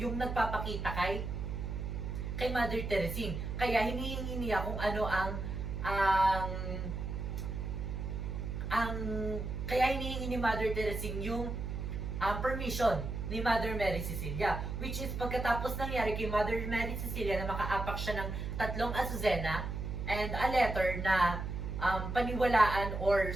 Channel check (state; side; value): noise; right; hum, 4 dB below the sound